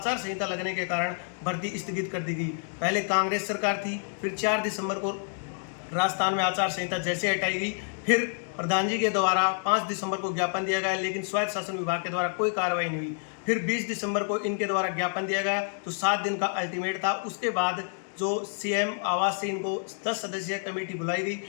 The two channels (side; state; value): right; silent; 59 dB below the other